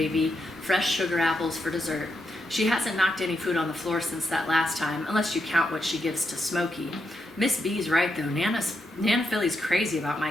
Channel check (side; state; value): both; normal; correlation 0.83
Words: fresh sugar apples for dessert. She hasn't knocked any food on the floor since that last time, unless you count what she gives to Smokey. Miss B's right, though. Nana Philly's crazy about my